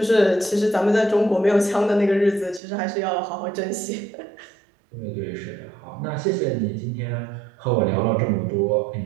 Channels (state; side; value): drops out; left; at 2.6 s